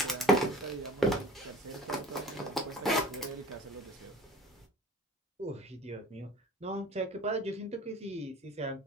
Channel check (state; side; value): normal; both; correlation 0.44